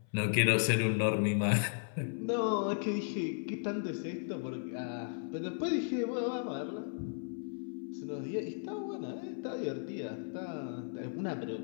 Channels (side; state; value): right; silent; 54 dB below the other